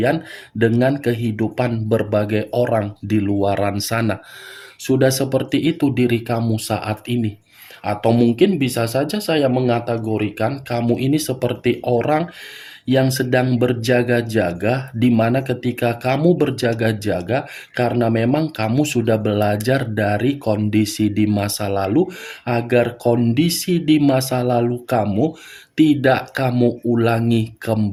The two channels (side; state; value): both; identical; correlation 1.00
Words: dengan kehidupan berbagai orang di luaran sana. Sudah seperti itu diri kamu saat ini. Atau mungkin bisa saja saya mengategorikan kamu ini seperti orang yang sedang berjaga-jaga, di mana ketika kamu berjaga-jaga karena memang kamu sudah belajar dari kondisi di masa lalu, agar kondisi di masa lalu kamu tidak kamu ulangi